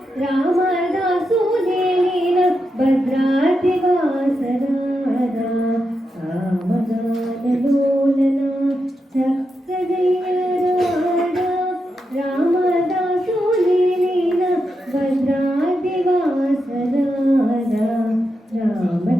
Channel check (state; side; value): normal; both; correlation 0.86